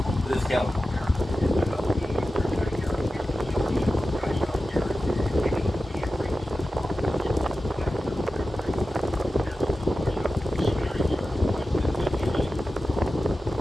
with the scale?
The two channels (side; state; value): both; normal; correlation 0.94